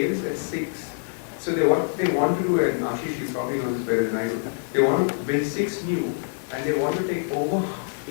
at 6. So what they want to do, and Ashish, you probably know this better than I do, they want to build 6 new, and they want to take over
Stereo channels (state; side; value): silent; right; digital silence